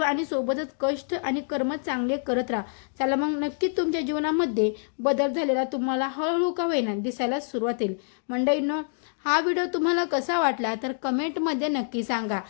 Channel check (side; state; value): right; silent; digital silence